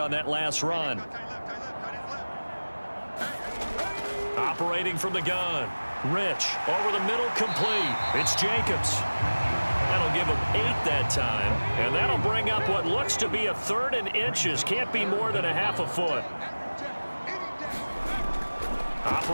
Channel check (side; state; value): both; inverted; correlation -1.00